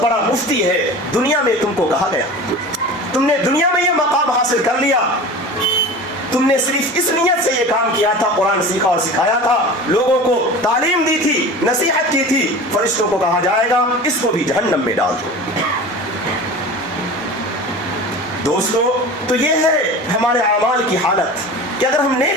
بڑا مفتی ہے. دنیا میں تم کو کہا گیا, تم نے دنیا میں یہ مقام حاصل کر لیا, تم نے صرف اس نیت سے یہ کام کیا تھا, قرآن سیکھا اور سکھایا تھا, لوگوں کو تعلیم دی تھی, نصیحت کی تھی. فرشتوں کو کہا جائے گا اس کو بھی جہنم میں ڈال دو. دوستو تو یہ ہے ہمارے اعمال کی حالت. کہ اگر ہم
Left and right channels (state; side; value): normal; both; correlation 0.35